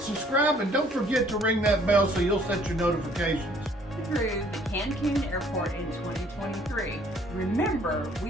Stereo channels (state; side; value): normal; both; correlation 0.59